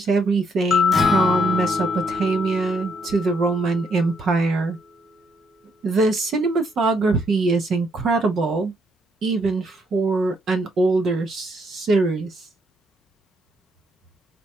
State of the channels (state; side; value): normal; both; correlation 0.73